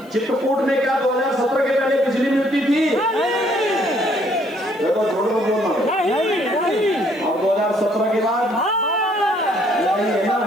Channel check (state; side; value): noise; left; hiss, 29 dB below the sound